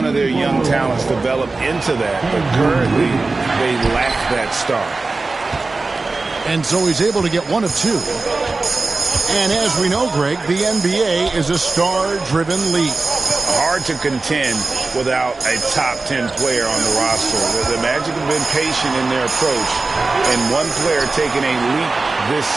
of their young talents develop into that, but currently they lack that star. And so he's able to get one of two. And as we know, Greg, the NBA is a star-driven league. Hard to contend without a top 10 player on the roster. The Magic have been patient in their approach, and one player taking a leap this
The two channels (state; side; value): quieter; left; 3.6 dB